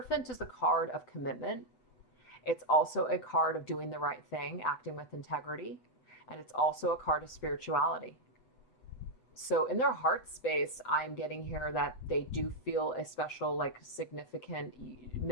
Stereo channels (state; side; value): late; right; 7.8 ms